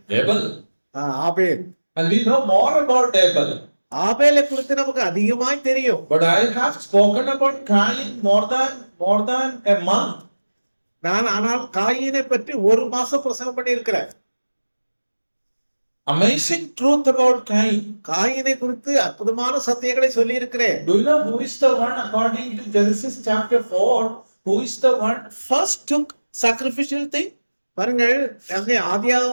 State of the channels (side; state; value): both; inverted; correlation -1.00